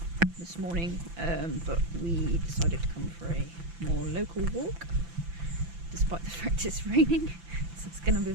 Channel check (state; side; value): late; left; 5.9 ms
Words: this morning, but we decided to come for a more local walk despite the fact it's raining, so it's going to be